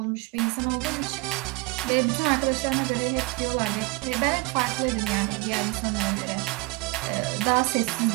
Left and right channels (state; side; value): quieter; left; 24.7 dB